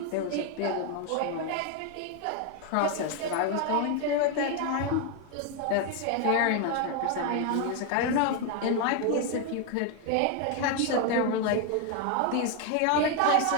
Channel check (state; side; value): different; both; correlation 0.01